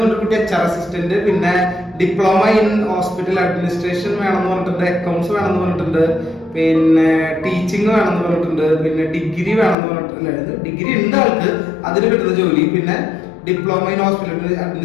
പറഞ്ഞ കുട്ടി HR അസിസ്റ്റന്റ്, പിന്നെ ഡിപ്ലോമ ഇൻ ഹോസ്പിറ്റൽ അഡ്മിനിസ്ട്രേഷൻ വേണമെന്ന് പറഞ്ഞിട്ടുണ്ട്, അക്കൗണ്ട്സ് വേണമെന്ന് പറഞ്ഞിട്ടുണ്ട്, പിന്നെ ടീച്ചിങ് വേണമെന്ന് പറഞ്ഞിട്ടുണ്ട്, പിന്നെ ഡിഗ്രി വേണമെന്ന് പറഞ്ഞിട്ടുണ്ട്. ഡിഗ്രി ഉണ്ട് ആൾക്ക്, അതിന് കിട്ടുന്ന ജോലി, പിന്നെ diploma in hospital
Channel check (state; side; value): drops out; right; at 9.8 s